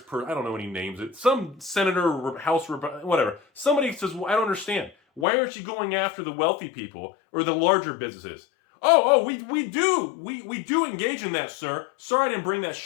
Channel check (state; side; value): drops out; right; at 5.2 s